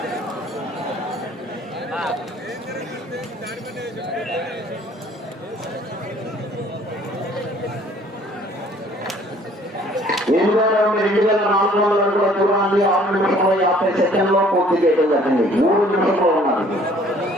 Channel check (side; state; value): both; normal; correlation 0.56